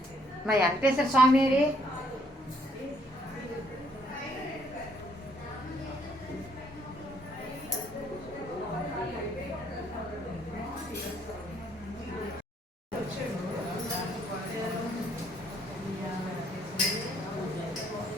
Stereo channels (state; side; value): normal; both; correlation 0.67